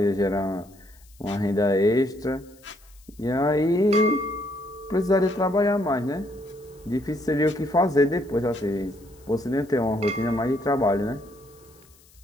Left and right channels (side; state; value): left; noise; hiss, 28 dB below the sound